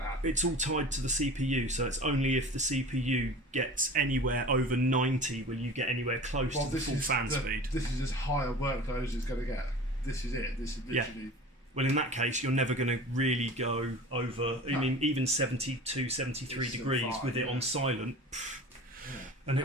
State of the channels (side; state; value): both; normal; correlation 0.38